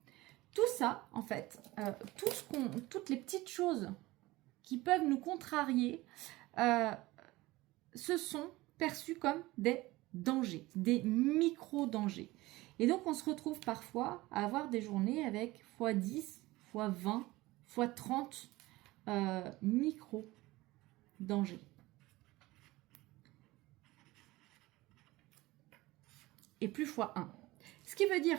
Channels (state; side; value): quieter; left; 19.5 dB